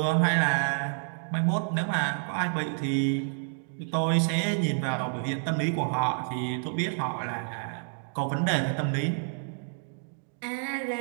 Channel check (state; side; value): silent; left; digital silence